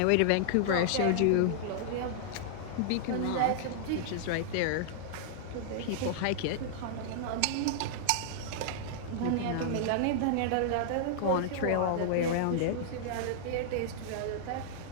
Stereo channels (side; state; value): both; different; correlation -0.01